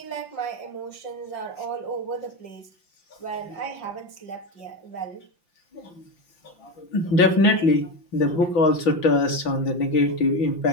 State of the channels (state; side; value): late; right; 5.8 ms